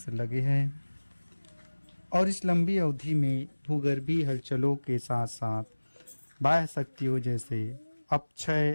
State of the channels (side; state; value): both; inverted; correlation -1.00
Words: लगे हैं और इस लंबी अवधि में भूगर्भीय हलचलों के साथ साथ बाह्य शक्तियों जैसे